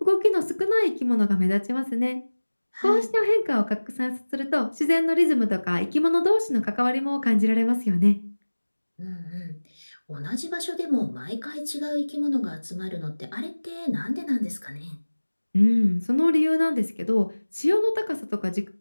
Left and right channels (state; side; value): inverted; both; correlation -1.00